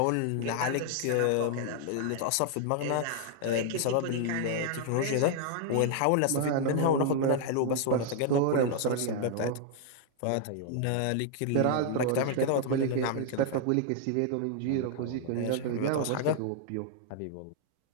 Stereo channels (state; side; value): different; both; correlation 0.00